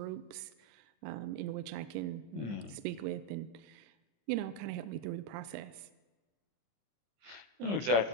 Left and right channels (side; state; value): left; late; 25 ms